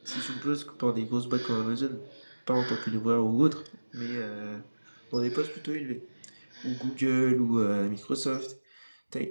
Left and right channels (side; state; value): both; inverted; correlation -1.00